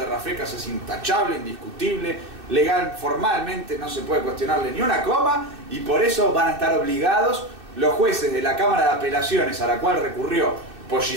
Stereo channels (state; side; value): late; left; 2.6 ms